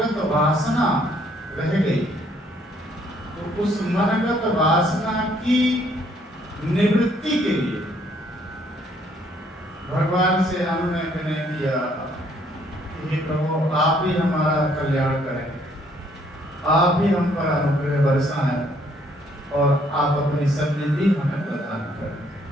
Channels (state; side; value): normal; both; correlation 0.66